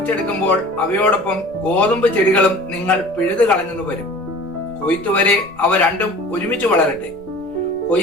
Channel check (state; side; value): noise; right; rumble, 26 dB below the sound